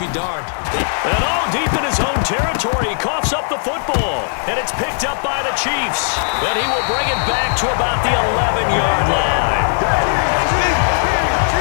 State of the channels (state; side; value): silent; right; digital silence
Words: darned. And all deep in his own territory, he coughs up the football, and it's picked up by the Chiefs. Then he will bring it back to about the 11-yard line.